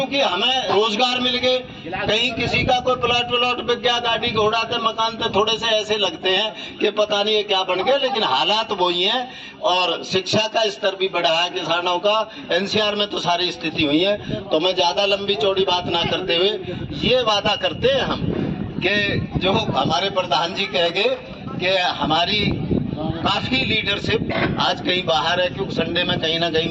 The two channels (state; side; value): identical; both; correlation 1.00